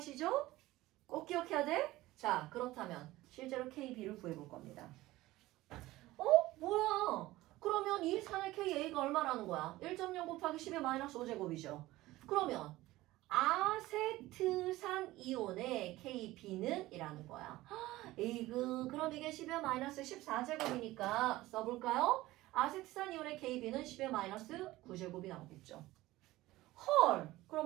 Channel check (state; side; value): quieter; left; 17.6 dB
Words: 꼭 기억해야 돼? 자, 그렇다면 실제로 KB를 구해볼 겁니다. 뭐야? 그러면 이 산의 KA가 얼마라는 거야? 1.0 곱하기 10의 마이너스 5제곱이죠. 그러면 아세트산 이온의 KB는 이라는 거야. 에이그, 그럼 이게 10의 마이너스 14제곱이니까 써볼까요? 아세트산 이온의 KB는 10의 마이너스 9제곱이 나오겠죠. 헐!